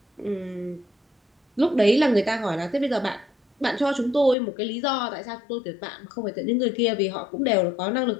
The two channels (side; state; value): right; drops out; at 4.4 s